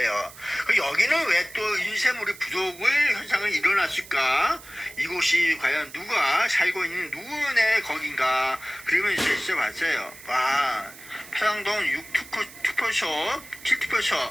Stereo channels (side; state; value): right; noise; hiss, 18 dB below the sound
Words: 여기는 왜 또 인쇄물이 부족을 현상을 일어났을까? 이곳이 과연 누가 살고 있는 누구네 거긴가? 그러면서 있어봤어요. 와, 파장동 6투표소, 7투표소,